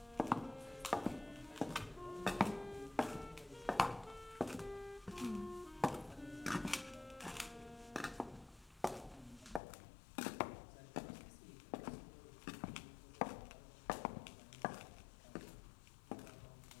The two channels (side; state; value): right; drops out; at 9.6 s